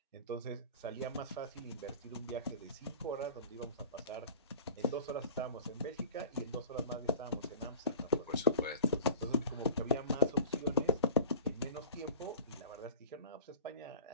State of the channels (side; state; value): both; inverted; correlation -0.38